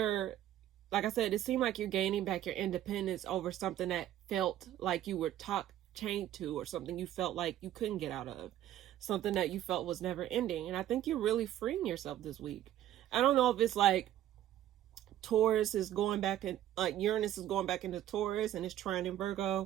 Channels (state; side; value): quieter; left; 12.3 dB